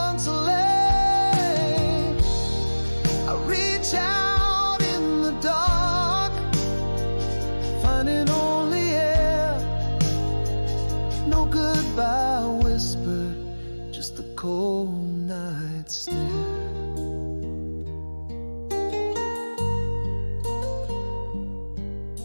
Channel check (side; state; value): both; inverted; correlation -1.00